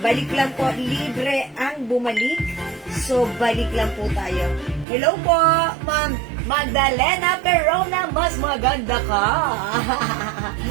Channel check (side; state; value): left; drops out; at 4.9 s